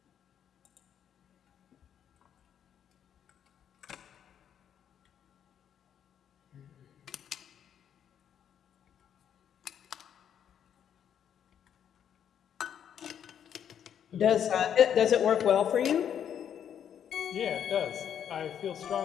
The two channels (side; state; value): right; quieter; 9.0 dB